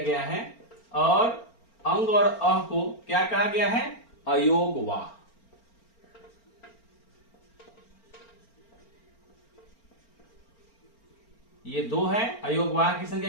है और अंग और अह को क्या कहा गया है? अयोगवाह। ये 2 है। अयोगवाह की संख्या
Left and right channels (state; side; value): late; right; 4.4 ms